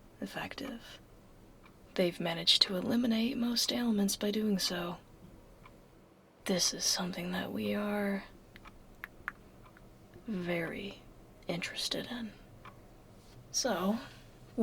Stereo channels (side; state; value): both; identical; correlation 1.00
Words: effective. They've managed to eliminate most ailments by doing so. This is something that we are very interested in. So,